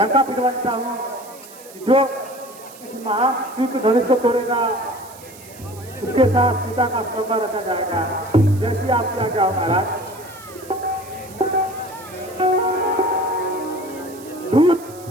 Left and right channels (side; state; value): right; noise; hiss, 20 dB below the sound